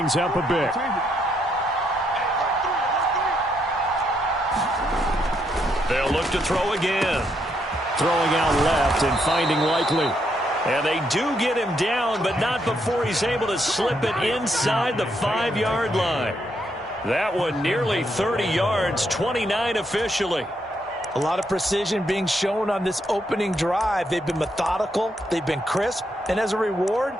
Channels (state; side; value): normal; both; correlation 0.76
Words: up a bit. They'll look to throw again. Throwing out left and finding Likely. And they do get him down, but not before he's able to slip it inside the 5-yard line. That one nearly 30 yards, 29 officially. A lot of precision being shown on this opening drive. They've been methodical, they've been crisp, and as a reward,